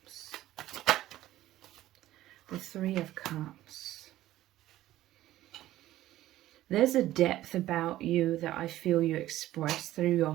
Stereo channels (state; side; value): quieter; left; 14.6 dB